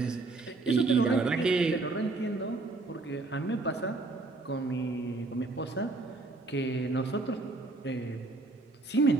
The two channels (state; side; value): quieter; left; 3.3 dB